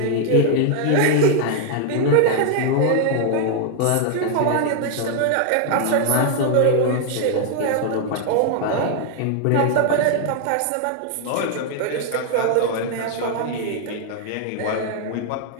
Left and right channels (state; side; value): different; both; correlation 0.00